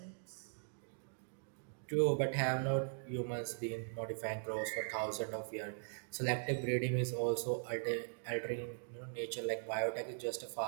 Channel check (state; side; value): silent; left; digital silence